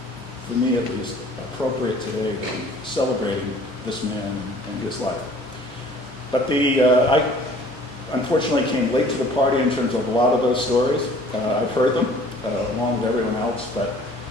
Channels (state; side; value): normal; both; correlation 0.52